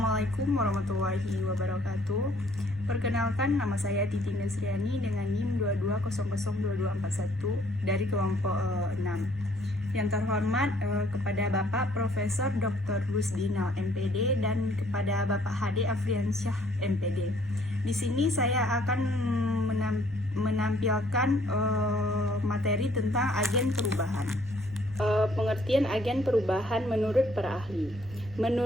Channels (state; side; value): noise; right; rumble, 19 dB below the sound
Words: warahmatullahi wabarakatuh. Perkenalkan, nama saya Titi Nesriani dengan NIM 22002241 dari kelompok 6. Yang terhormat kepada Bapak Profesor Dr. Rusdinal MPD dan kepada Bapak Hade Afriansyah MPD. Di sini saya akan menampilkan materi tentang agen perubahan. Pengertian agen perubahan menurut para ahli.